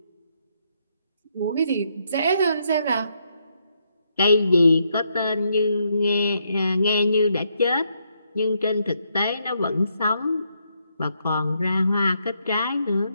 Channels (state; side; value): inverted; both; correlation -0.76